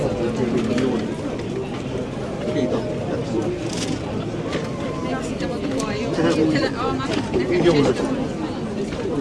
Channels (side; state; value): both; identical; correlation 1.00